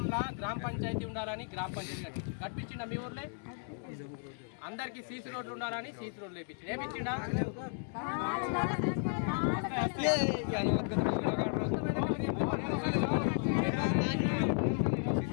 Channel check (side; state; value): right; silent; 55 dB below the other